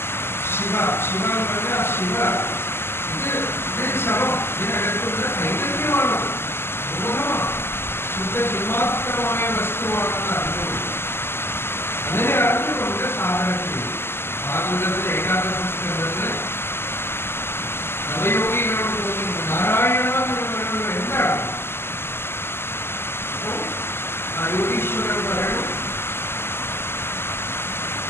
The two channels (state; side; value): late; right; 0.12 ms